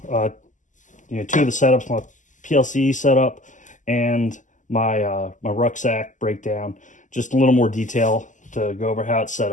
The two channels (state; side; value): late; right; 0.37 ms